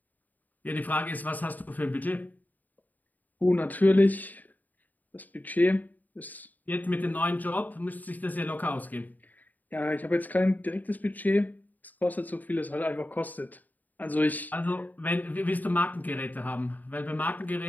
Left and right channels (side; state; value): right; late; 0.083 ms